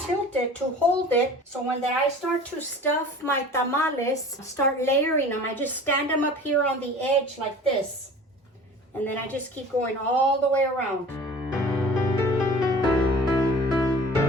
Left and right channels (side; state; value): both; normal; correlation 0.43